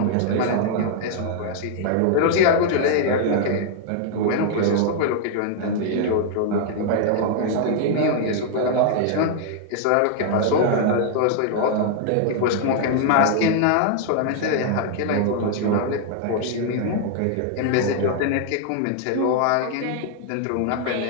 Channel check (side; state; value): both; different; correlation -0.01